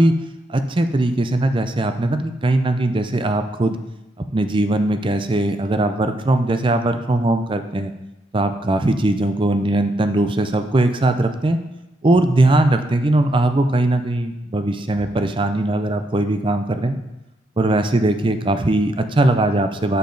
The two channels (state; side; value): normal; both; correlation 0.78